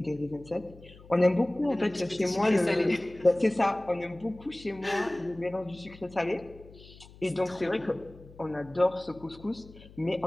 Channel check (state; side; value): noise; left; hum, 21 dB below the sound